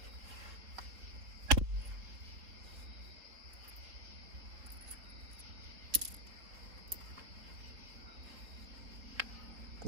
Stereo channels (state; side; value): late; left; 3.9 ms